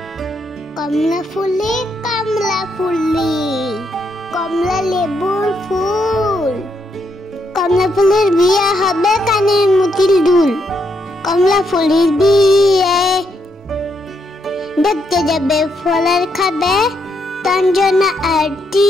কমলা ফুলি কমলা ফুলি, কমলা লেবুর ফুল। কমলা ফুলের বিয়ে হবে কানের মুতিল দুল। কমলা ফুলের বিয়ে দেখতে যাবে ফলের খাবে তঞ্জনা আর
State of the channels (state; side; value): normal; both; correlation 0.77